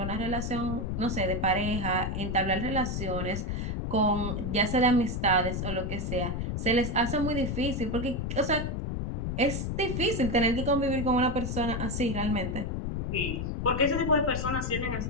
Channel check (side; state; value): left; noise; rumble, 2 dB below the sound